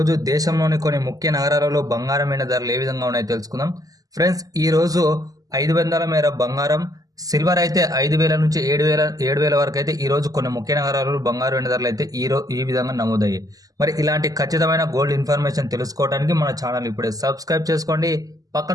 దేశంలోని కొన్ని ముఖ్య నగరాలలో బంగారం మీద ధరలు ఏ విధంగా ఉన్నాయో తెలుసుకుందాం. ఫ్రెండ్స్, ఈరోజు 500 మేర బంగారం, సిల్వర్ అయితే 5,000 నుంచి 7,000 వరకు అయితే ఈరోజు కొన్ని ముఖ్య నగరాలలో బంగారు వెండి ధరలు అయితే ఈ విధంగా నమోదయ్యాయి. మరి ఇలాంటి ఖచ్చితమైన గోల్డ్ ఇన్ఫర్మేషన్ తెలుసుకోవడానికి మన ఛానల్ ఇప్పుడే సబ్స్క్రైబ్ చేసుకోండి.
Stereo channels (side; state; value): left; late; 0.17 ms